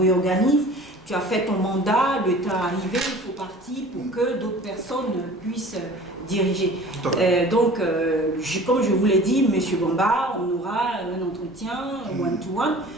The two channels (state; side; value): normal; both; correlation 0.44